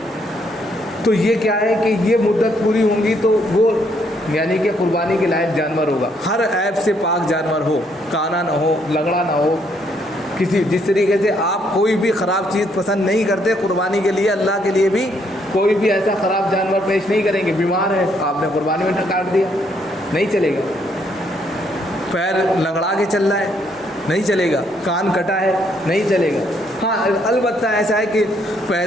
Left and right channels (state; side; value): normal; both; correlation 0.71